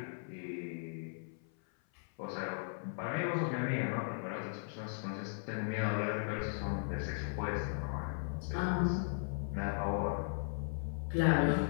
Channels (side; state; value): right; silent; 53 dB below the other